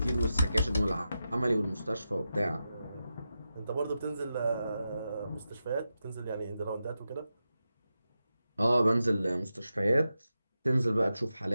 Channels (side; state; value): both; inverted; correlation -0.90